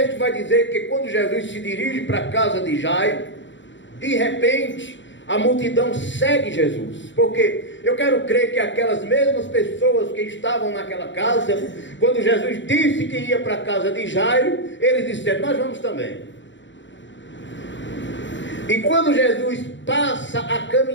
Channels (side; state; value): right; late; 0.54 ms